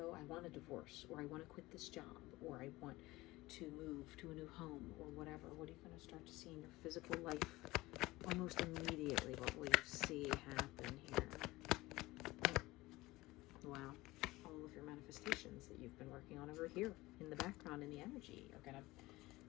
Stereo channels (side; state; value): right; quieter; 19.6 dB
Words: I want a divorce, or I want to quit this job, or I want to move to a new home, or whatever, what are you going to start to see in your physical life almost immediately? What will you see happen here? Wow. All of your manifestations that you've been working on over here in the background in the energy are going to